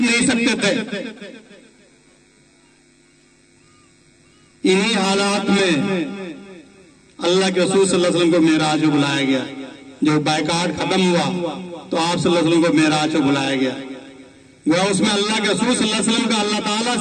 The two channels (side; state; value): both; identical; correlation 1.00